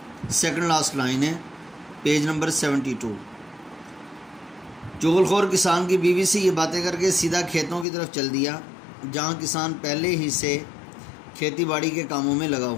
سیکنڈ لاسٹ لائن ہے پیج نمبر 72۔ چغل خور کسان کی بیوی سے یہ باتیں کر کے سیدھا کھیتوں کی طرف چل دیا، جہاں کسان پہلے ہی سے کھیتی باڑی کے کاموں میں لگا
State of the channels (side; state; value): right; drops out; at 7.9 s